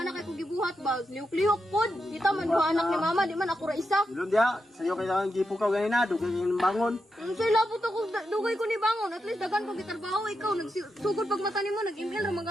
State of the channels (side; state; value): both; normal; correlation 0.86